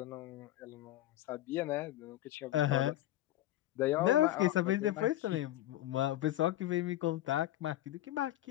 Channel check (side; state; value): right; quieter; 14.4 dB